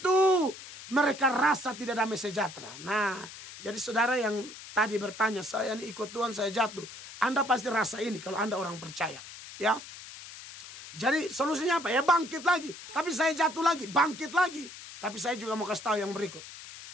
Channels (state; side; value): noise; left; hiss, 14 dB below the sound